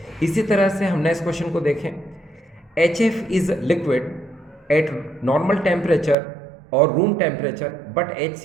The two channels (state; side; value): drops out; left; at 6.2 s